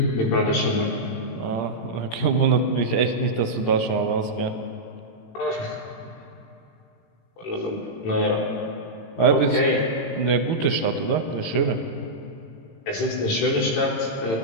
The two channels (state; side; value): late; right; 17 ms